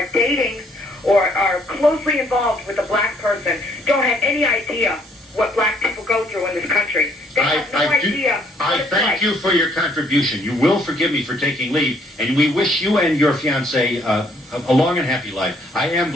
dating or are closely involved with a black person, don't have any idea what black people go through in this country. They have no idea. I thank you for your contribution. You will forgive me for taking leave, and we wish you and your fiancé a long and happy life. I am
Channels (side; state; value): both; normal; correlation 0.65